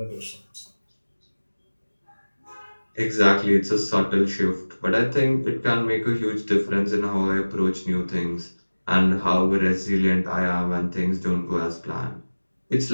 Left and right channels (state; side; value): inverted; both; correlation -1.00